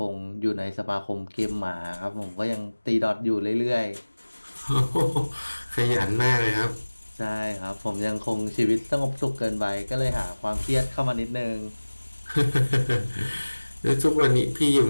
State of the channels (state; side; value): inverted; both; correlation -1.00